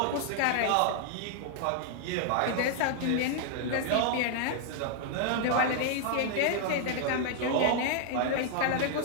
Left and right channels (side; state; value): both; different; correlation -0.01